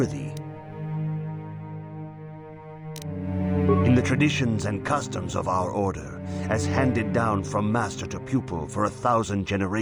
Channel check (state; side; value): identical; both; correlation 1.00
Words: In the traditions and customs of our order, as handed down from master to pupil for 1,000